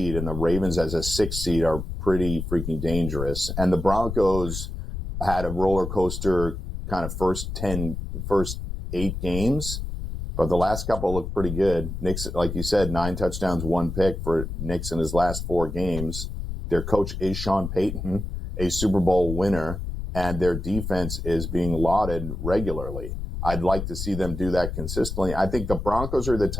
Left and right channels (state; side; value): noise; left; rumble, 6 dB below the sound